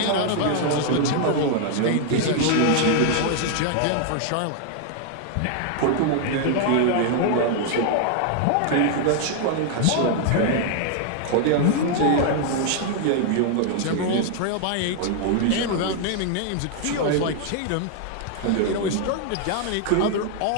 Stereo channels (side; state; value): both; different; correlation 0.00